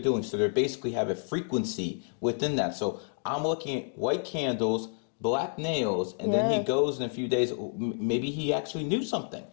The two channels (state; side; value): silent; right; 58 dB below the other